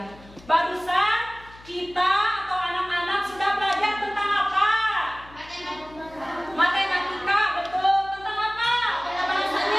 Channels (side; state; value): left; noise; hum, 22 dB below the sound